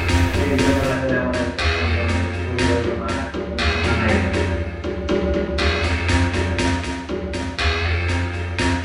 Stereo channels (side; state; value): both; identical; correlation 1.00